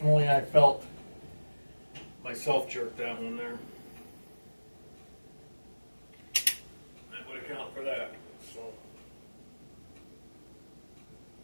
I felt myself jerk that one there. That would account for that. So.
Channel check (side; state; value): both; inverted; correlation -1.00